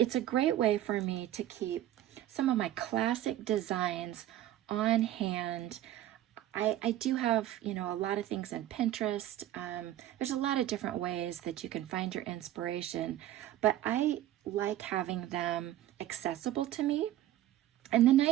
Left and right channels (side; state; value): left; quieter; 13.2 dB